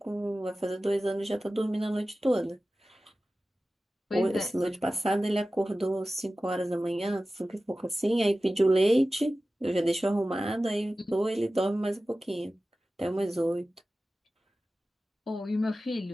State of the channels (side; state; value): both; normal; correlation 0.95